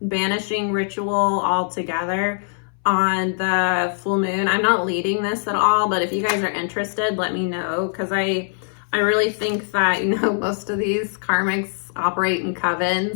ritual altogether on the full moon. I'm not leading this at all, but if you guys are interested, let me know, because I really think that, you know, most of these karmics operate in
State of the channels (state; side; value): silent; right; 62 dB below the other